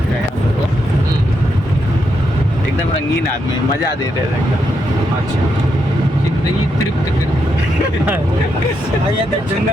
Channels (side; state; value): both; normal; correlation 0.81